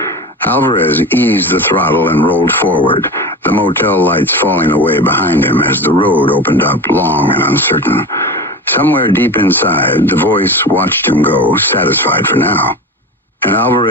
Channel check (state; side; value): normal; both; correlation 0.29